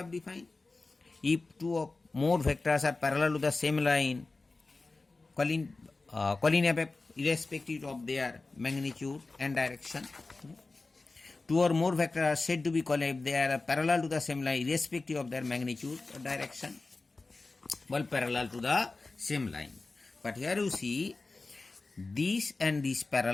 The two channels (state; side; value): quieter; right; 3.5 dB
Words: defined. If two or more vectors are parallel to the same line, collinear vector irrespective of their magnitude and direction. Two or more vectors are said to be collinear if they are parallel to the same line irrespective of their magnitude or direction. Well, parallel to the same line. But here you see this and this